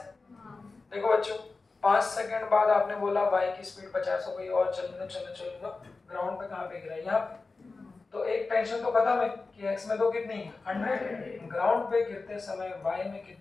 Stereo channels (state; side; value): quieter; right; 3.9 dB